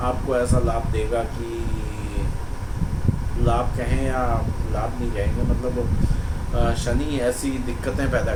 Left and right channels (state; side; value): identical; both; correlation 1.00